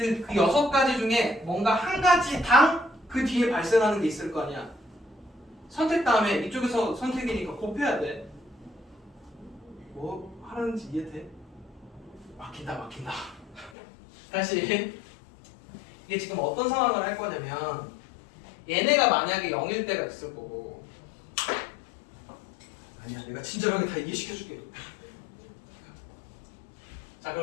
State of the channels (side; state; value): right; drops out; at 13.7 s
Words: 6가지 중에 뭔가 한 가지당 그 뒤에 발생하는 게 있을 거 아니야. 선택 다음에 이쪽에서 선택이니까 곱해야 돼. 뭐 하는지 이해돼? 막힌다. 다시 이게 지금 어떤 상황을 할 거냐면 얘네가 만약에 0일 때가 있을 거고 아니야 내가 친절하게 다 이해시켜줄게. 자